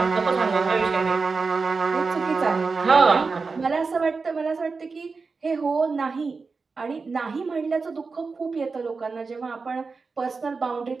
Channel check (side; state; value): left; quieter; 4.5 dB